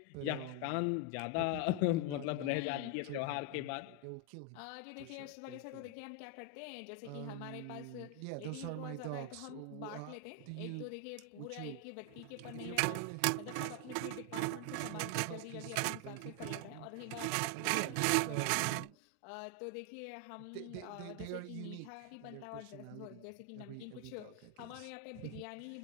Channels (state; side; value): different; both; correlation 0.01